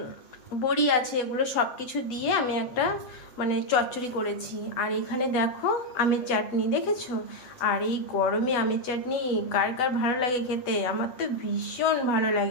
বড়ি আছে। এগুলো সব কিছু দিয়ে আমি একটা চচ্চড়ি করেছি। আর এখানে দেখো আমের চাটনি, দেখেছো? আর এই গরমে আমের চাটনি কার কার ভালো লাগে খেতে? আমার তো ভীষণ ভালো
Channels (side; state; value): right; late; 7.9 ms